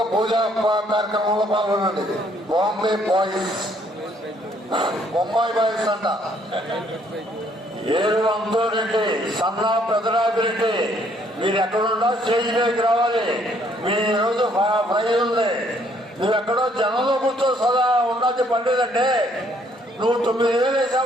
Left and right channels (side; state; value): both; normal; correlation 0.66